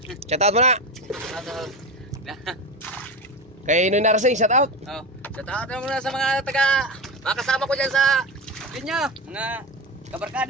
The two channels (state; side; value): normal; both; correlation 0.20